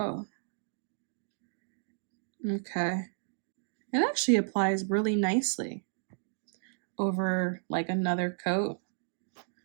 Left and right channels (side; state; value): left; silent; digital silence